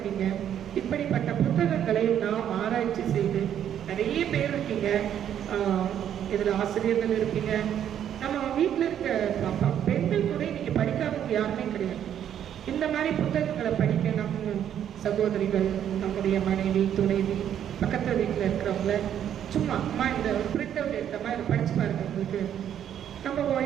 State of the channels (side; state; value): left; quieter; 9.8 dB